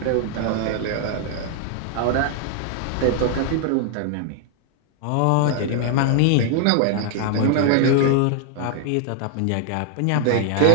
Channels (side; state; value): both; different; correlation 0.00